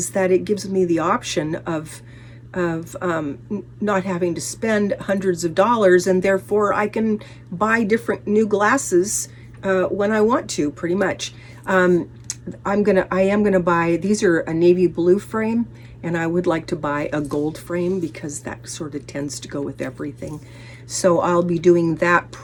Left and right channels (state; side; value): identical; both; correlation 1.00